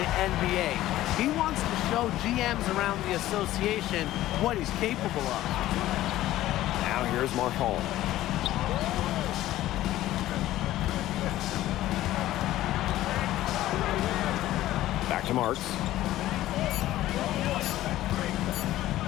NBA. He wants to show GMs around the association what he's capable of. Now here's Marchand. Back to Marks.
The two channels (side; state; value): right; quieter; 14.8 dB